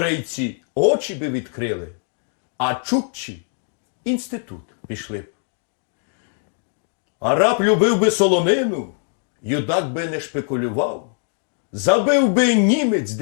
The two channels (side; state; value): right; silent; 55 dB below the other